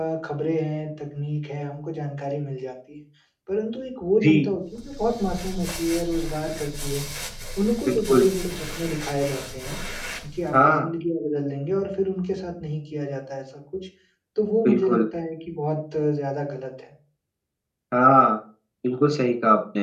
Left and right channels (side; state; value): both; identical; correlation 1.00